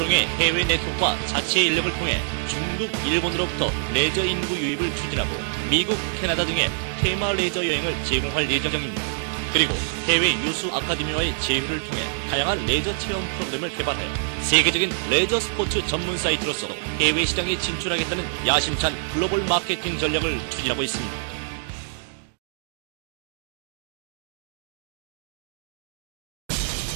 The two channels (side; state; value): left; silent; digital silence